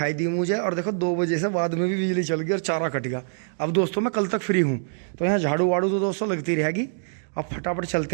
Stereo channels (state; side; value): silent; left; digital silence